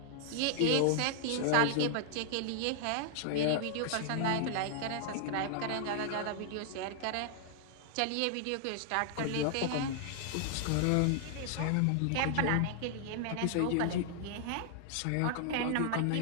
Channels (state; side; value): different; both; correlation 0.00